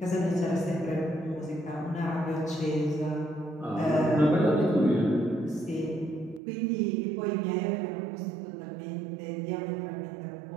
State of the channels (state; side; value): drops out; left; at 6.4 s